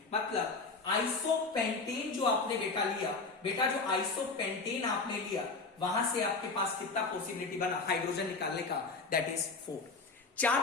मतलब आइसोपेंटेन जो आपने बेटा लिया, बेटा जो आइसोपेंटेन आपने लिया, वहां से आपके पास कितना पॉसिबिलिटी बना हाइड्रोजन निकालने का, दैट इज 4। 4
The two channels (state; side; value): quieter; right; 4.0 dB